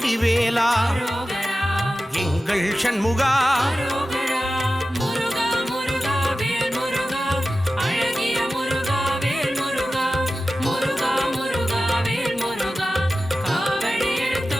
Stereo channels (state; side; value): normal; both; correlation 0.94